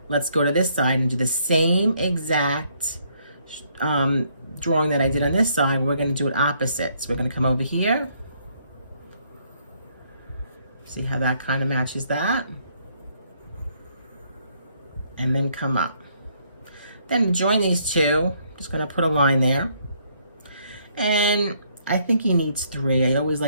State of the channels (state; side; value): inverted; both; correlation -0.69